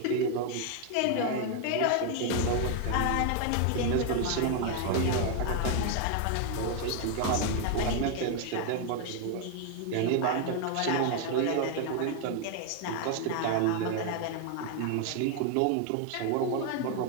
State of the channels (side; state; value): both; different; correlation 0.01